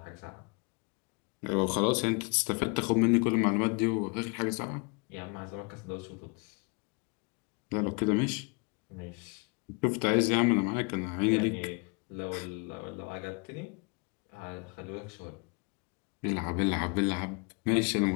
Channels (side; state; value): right; quieter; 32.3 dB